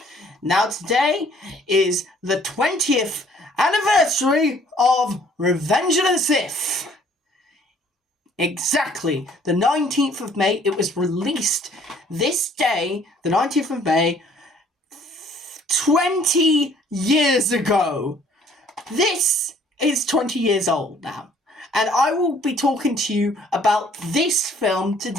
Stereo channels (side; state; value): both; normal; correlation 0.59